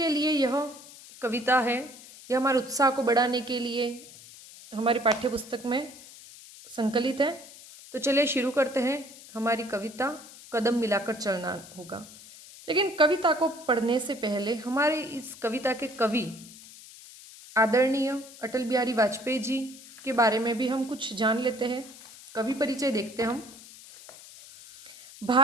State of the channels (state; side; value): noise; left; hiss, 18 dB below the sound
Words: लिए यह कविता है। यह हमारे उत्साह को बढ़ाने के लिए हमारी पाठ्य पुस्तक में संकलित है। तो चलिए शुरू करते हैं हमारी कविता कदम मिलाकर चलना होगा। लेकिन कविता को पढ़ने से पहले हमारे इस कविता के कवि आदरणीय अटल बिहारी वाजपेयी जी के बारे में भी हम कुछ जान लेते हैं। कवि परिचय देखते हैं हम।